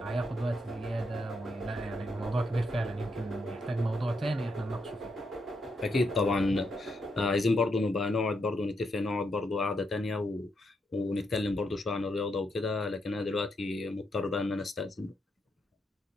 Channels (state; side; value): normal; both; correlation 0.80